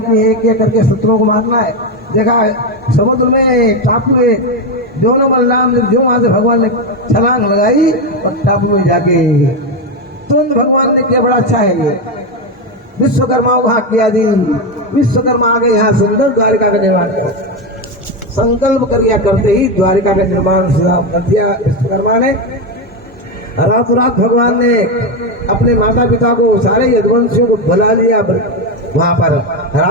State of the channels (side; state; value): both; normal; correlation 0.11